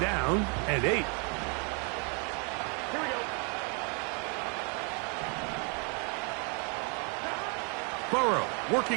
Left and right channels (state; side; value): quieter; left; 36.2 dB